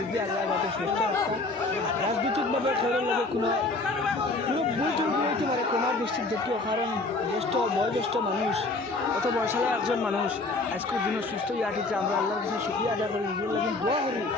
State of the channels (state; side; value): quieter; right; 3.3 dB